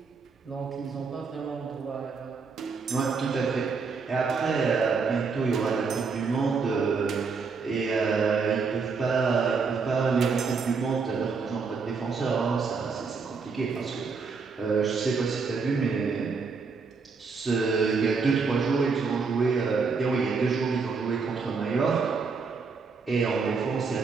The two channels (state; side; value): quieter; left; 5.0 dB